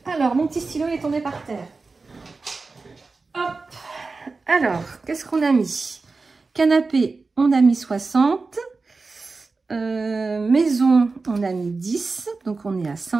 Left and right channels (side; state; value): left; quieter; 4.0 dB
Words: Alors, mon petit stylo est tombé par terre. Hop. Alors, qu'est-ce qu'on a mis? Canapé, on a mis 60. Maison, on a mis 10. Donc, on est à